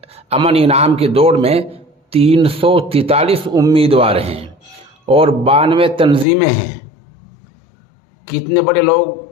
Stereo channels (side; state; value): right; drops out; at 6.2 s